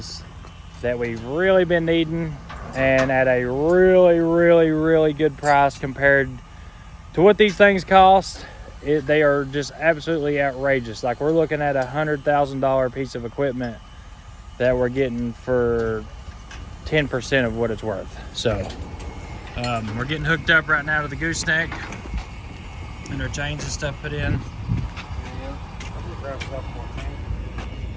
that we've really been needing, and at a really good price compared to what these things cost. They are just absolutely outrageous. Like, we're looking at $100,000 piece of equipment that we're getting for 10% of what it's worth. So we're getting hooked up right now to the gooseneck, and our chains and stuff put in.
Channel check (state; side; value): identical; both; correlation 1.00